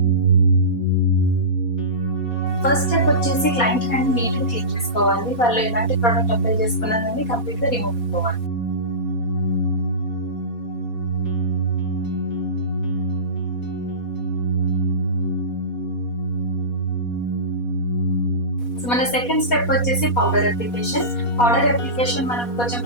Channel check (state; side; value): late; right; 4.2 ms